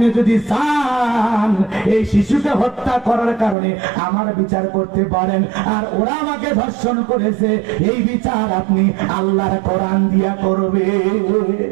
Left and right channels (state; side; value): drops out; left; at 3.6 s